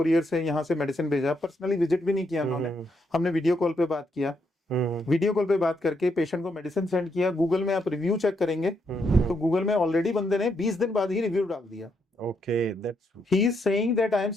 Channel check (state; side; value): normal; both; correlation 0.78